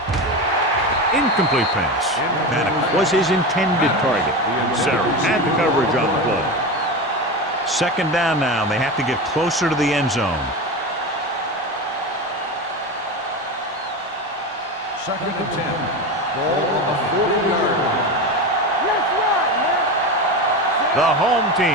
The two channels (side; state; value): both; normal; correlation 0.22